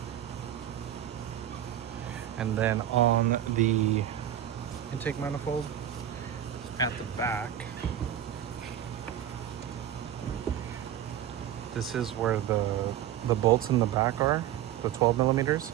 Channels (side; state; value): left; quieter; 11.1 dB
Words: And then on the intake manifold at the back, this is where the bolts in the back are, the 12 millimeters.